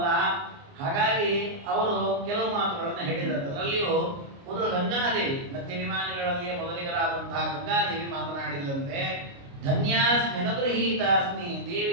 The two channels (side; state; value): left; late; 29 ms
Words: ಹಾಗಾಗಿ ಅವರು ಕೆಲವು ಮಾತುಗಳನ್ನು ಹೇಳಿದಂತೆ. ಅದರಲ್ಲಿಯೂ ಮೊದಲು ಗಂಗಾದೇವಿ, ನದ್ಯಾಭಿಮಾನಿಗಳಲ್ಲಿಯೇ ಮೊದಲಿಗರಾದಂತಹ ಗಂಗಾದೇವಿ ಮಾತನಾಡಿದಂತೆ, ಧನ್ಯಾಸ್ಮ್ಯನುಗೃಹೀತಾಸ್ಮಿ